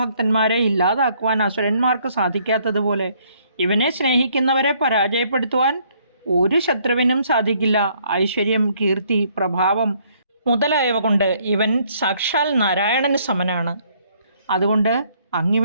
ഇല്ലാതാക്കുവാൻ അസുരന്മാർക്ക് സാധിക്കാത്തതുപോലെ ഇവനെ സ്നേഹിക്കുന്നവരെ പരാജയപ്പെടുത്തുവാൻ ഒരു ശത്രുവിനും സാധിക്കില്ല. ഐശ്വര്യം, കീർത്തി, പ്രഭാവം മുതലായവ കൊണ്ട് ഇവൻ സാക്ഷാൽ നാരായണന് സമനാണ്. അതുകൊണ്ട്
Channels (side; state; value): both; inverted; correlation -0.66